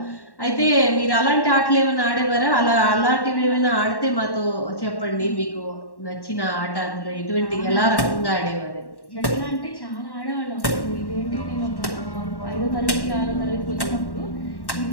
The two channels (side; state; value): right; late; 1.1 ms